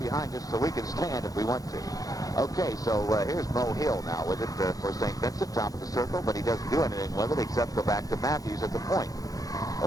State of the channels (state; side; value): late; right; 0.17 ms